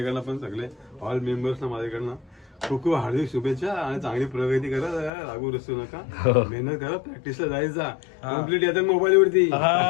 पण सगळे ऑल मेंबर्सना माझ्याकडनं खूप खूप हार्दिक शुभेच्छा आणि चांगली प्रगती करा. लागू रसू नका, मेहनत करा, प्रॅक्टिसला जायचा. कम्प्लीट येतात मोबाईल वरती.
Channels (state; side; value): drops out; right; at 5.1 s